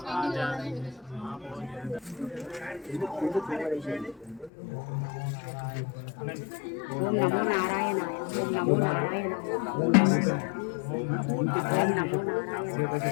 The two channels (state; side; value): drops out; right; at 4.5 s